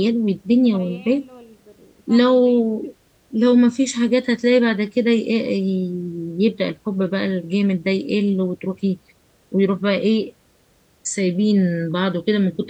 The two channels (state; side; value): identical; both; correlation 1.00